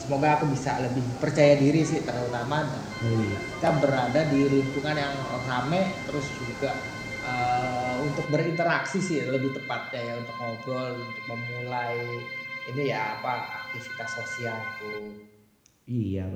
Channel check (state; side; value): identical; both; correlation 1.00